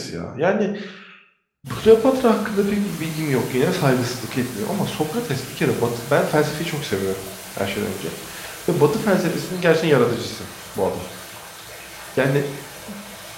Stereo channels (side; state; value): both; identical; correlation 1.00